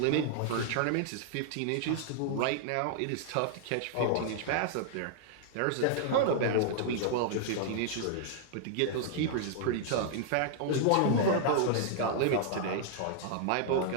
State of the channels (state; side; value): different; both; correlation -0.01